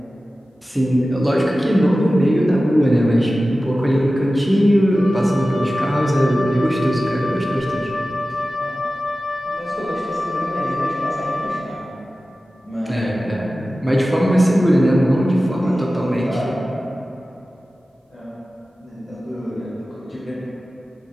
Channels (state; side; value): normal; both; correlation 0.95